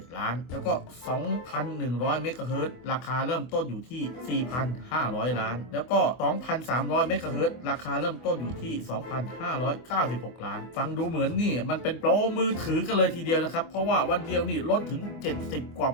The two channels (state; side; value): late; right; 24 ms